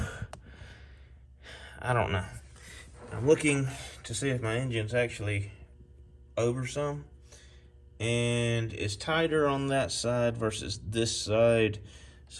I don't know. I'm looking to see if my engine's actually over some, and it's tighter on that side versus this side.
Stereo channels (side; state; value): both; identical; correlation 1.00